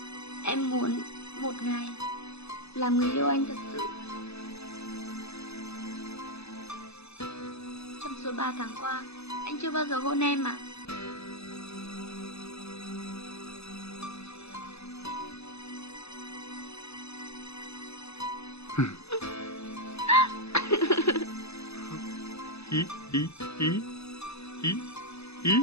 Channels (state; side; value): late; right; 0.79 ms